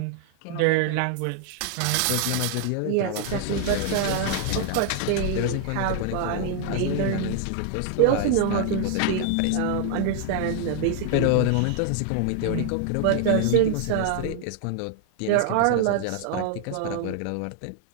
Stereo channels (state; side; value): different; both; correlation 0.00